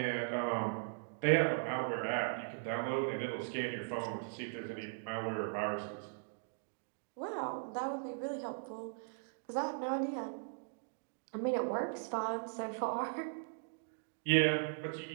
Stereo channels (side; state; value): left; silent; digital silence